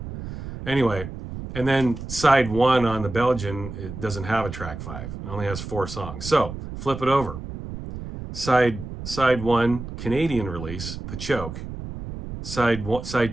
Anyway, and then side 1 on the Belgian, it doesn't have a track 5. It only has 4 songs. So, flip it over. Side 1, Canadian release, The Choke. Side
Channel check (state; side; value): noise; right; rumble, 9 dB below the sound